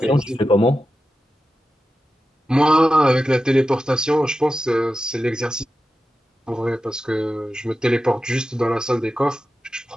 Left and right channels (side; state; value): both; normal; correlation 0.92